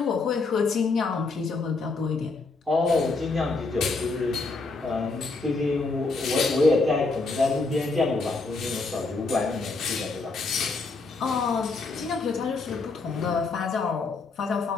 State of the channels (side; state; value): right; quieter; 3.8 dB